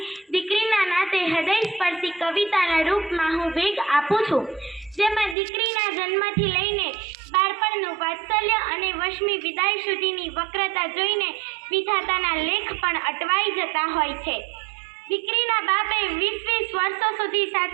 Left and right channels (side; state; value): left; drops out; at 5.4 s